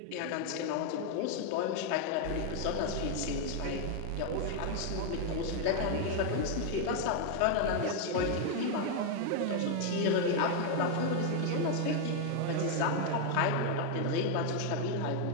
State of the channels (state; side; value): different; both; correlation 0.01